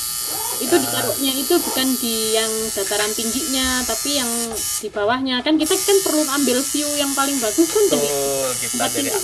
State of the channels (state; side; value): identical; both; correlation 1.00